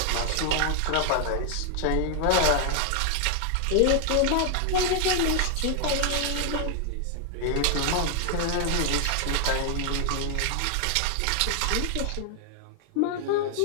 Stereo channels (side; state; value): both; different; correlation 0.00